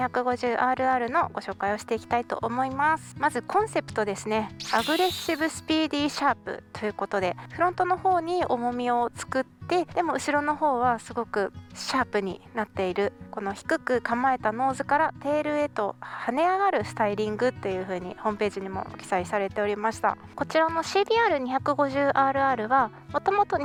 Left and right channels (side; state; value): both; identical; correlation 1.00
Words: のご紹介をしていきたいと思います。まずコンセプトですね。アグレッシブスピーディーシャープということで、フロントの方に重みを作ってでも後ろの方はすごくシャープになっている、この低く構えたノーズからテールへと跳ね上がるスタイリングという風にホームページにも記載されておりました。こちらの CBR250RR はもともと